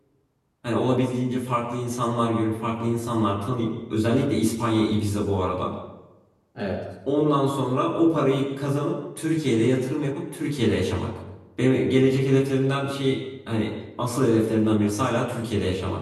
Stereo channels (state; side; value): identical; both; correlation 1.00